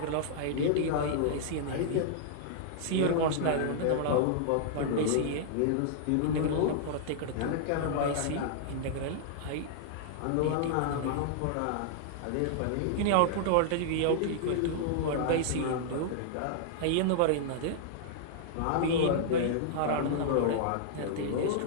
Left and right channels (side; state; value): both; different; correlation -0.01